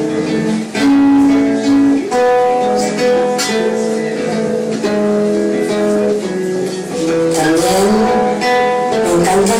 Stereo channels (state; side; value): identical; both; correlation 1.00